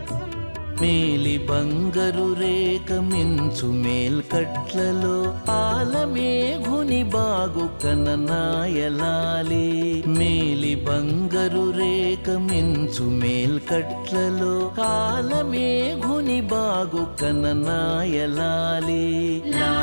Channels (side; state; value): both; inverted; correlation -1.00